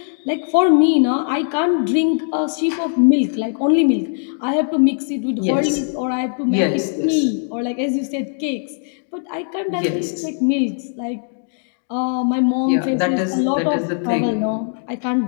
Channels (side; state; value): right; silent; digital silence